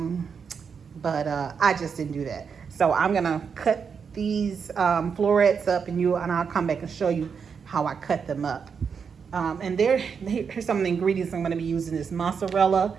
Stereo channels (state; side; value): quieter; left; 6.3 dB